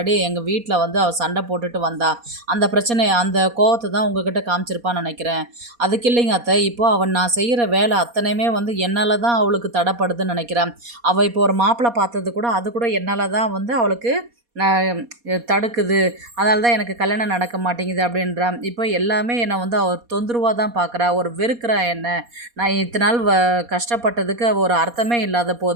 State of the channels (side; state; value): left; late; 4.2 ms